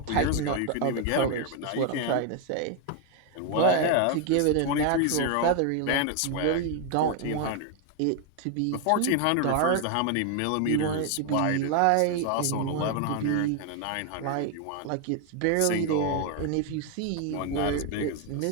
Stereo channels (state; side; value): different; both; correlation 0.01